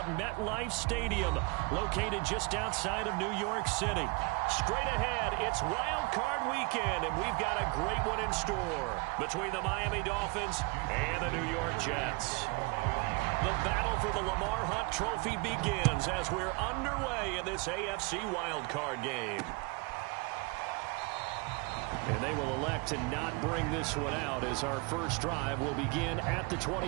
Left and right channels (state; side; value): quieter; left; 28.2 dB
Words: MetLife Stadium, located just outside of New York City. Straight ahead, it's Wild Card Weekend, and we've got a great one in store between the Miami Dolphins and the New York Jets. The battle for the Lamar Hunt Trophy begins as we're underway in this AFC Wild Card game. And they will elect to not bring this one out as our first drive will begin at the